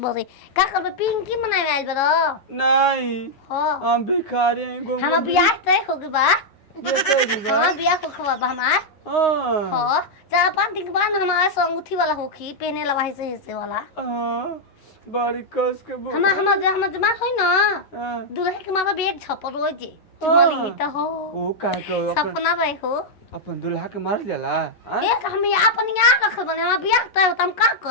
बरे का करबे पिंकी मनावे आइल बरो नहीं हां हम भिखारी हैं घूम हम बियाह तय हो गई बा हां बियाह को खवा हमार हां 4-5 दिन बाद हमारा संगूठी वाला होखी पहने ला वही से हिस्से वाला बड़ी कस के हम जमा होई ना दूल्हे के मामा भी एक छपर रोई जे चुमाली त हो ओ का को सपना रहे हो अपन दूल्हा के मार जाला एक हम अपन याद रखल बने हम बियाह तय हम का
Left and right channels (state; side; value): late; right; 9.9 ms